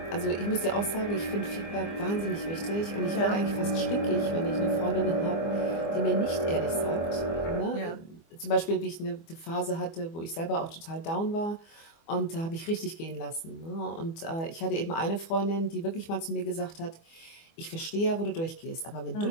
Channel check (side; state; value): right; late; 24 ms